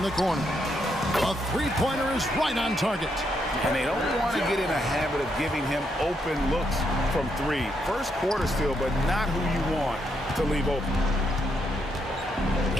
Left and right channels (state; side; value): normal; both; correlation 0.78